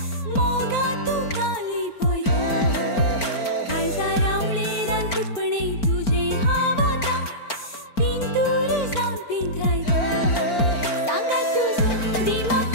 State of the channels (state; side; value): late; right; 4.4 ms